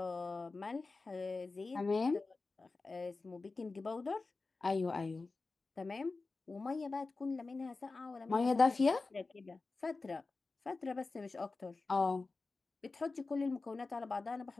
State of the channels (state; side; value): quieter; right; 3.8 dB